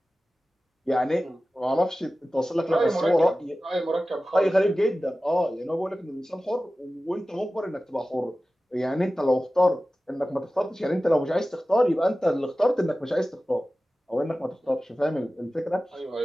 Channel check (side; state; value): both; normal; correlation 0.96